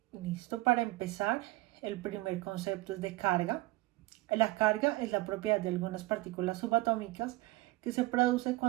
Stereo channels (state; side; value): quieter; left; 19.6 dB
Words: Listo, para empezar, el primer concepto es de carga. La carga es la propiedad de algunas partículas subatómicas que se produce